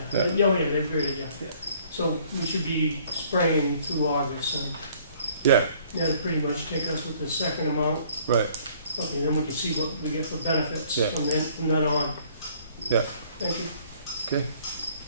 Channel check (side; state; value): both; inverted; correlation -0.59